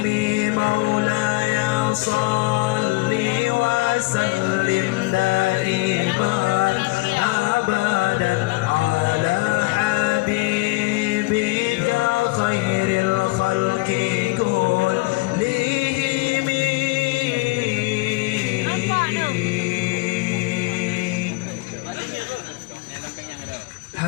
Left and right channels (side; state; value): right; quieter; 23.2 dB